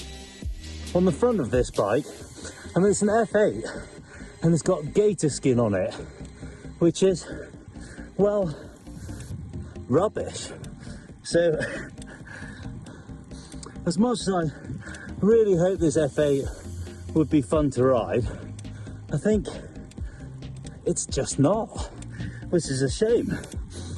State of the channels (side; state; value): both; identical; correlation 1.00